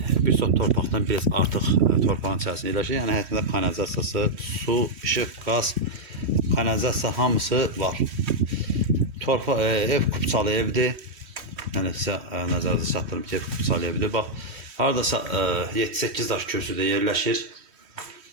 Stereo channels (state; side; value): late; left; 3.1 ms